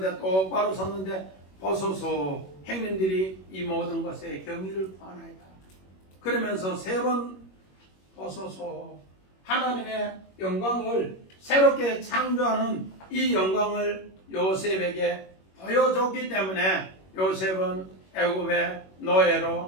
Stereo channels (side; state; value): right; late; 21 ms